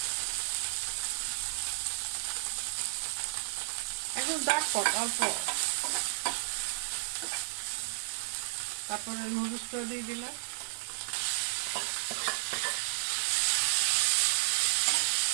এখন দেখো অল্প, তারপরে নুডলসটা দিয়ে দিলাম।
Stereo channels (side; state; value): left; silent; 56 dB below the other